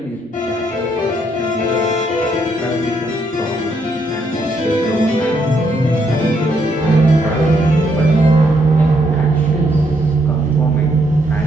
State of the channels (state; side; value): normal; both; correlation 0.74